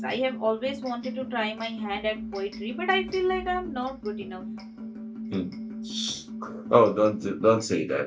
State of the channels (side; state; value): both; identical; correlation 1.00